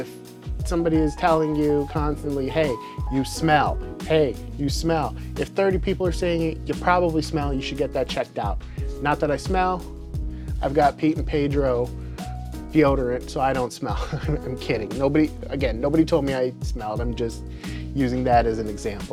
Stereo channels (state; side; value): identical; both; correlation 1.00